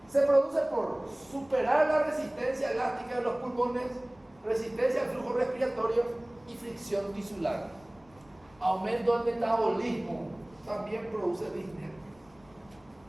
Se produce por superar la resistencia elástica de los pulmones, resistencia al flujo respiratorio y fricción tisular. Aumento del metabolismo, también produce disnea.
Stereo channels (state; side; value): noise; left; rumble, 29 dB below the sound